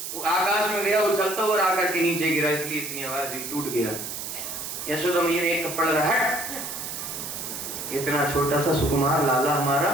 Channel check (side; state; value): right; noise; hiss, 7 dB below the sound